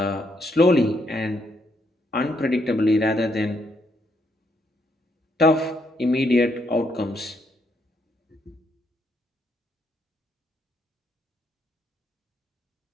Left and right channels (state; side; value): normal; both; correlation 0.75